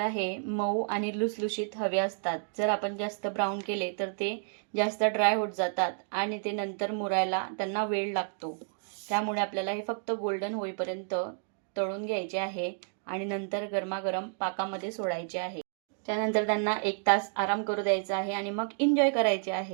हे मऊ आणि लुसलुशीत हवे असतात. जर आपण जास्त ब्राऊन केले तर ते जास्त ड्राय होत जातात आणि ते नंतर मुरायला त्यांना वेळ लागतो. त्यामुळे आपल्याला हे फक्त गोल्डन होईपर्यंत तळून घ्यायचे आहे आणि नंतर गरमागरम पाकामध्ये सोडायचे आहे. त्यानंतर त्यांना 1 तास आराम करू द्यायचा आहे आणि मग एन्जॉय करायचे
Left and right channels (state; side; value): silent; left; digital silence